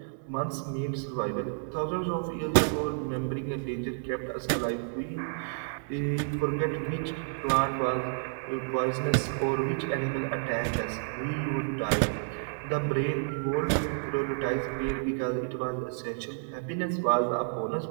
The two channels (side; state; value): left; silent; digital silence